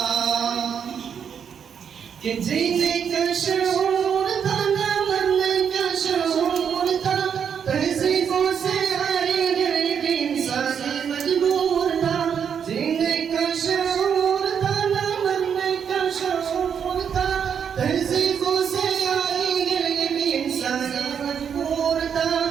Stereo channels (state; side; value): quieter; left; 7.6 dB